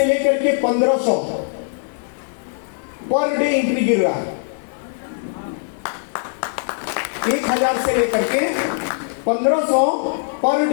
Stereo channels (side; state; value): right; silent; digital silence